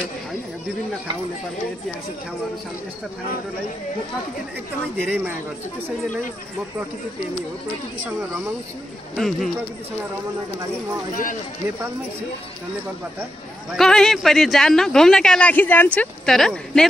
होइन, विभिन्न ठाउँ नेपालको ऐतिहासिक ठाउँहरू छन्। यस्ता ठाउँहरूलाई म प्रकृतिले एकदमै धेरै माया गर्छु। त्यसैले नै म प्रकृति प्रेमी हो, प्रकृतिसँग रमाउँछु। प्रकृतिसँग रमाउनका लागि म अहिले नेपालमै छु र नेपालबाट कहीँ पनि जान्न, घुम्नका लागि जान्छु तर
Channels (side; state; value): both; normal; correlation 0.85